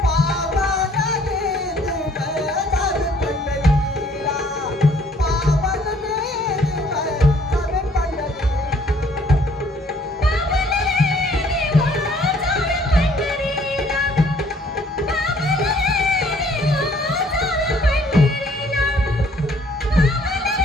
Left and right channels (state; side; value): normal; both; correlation 0.60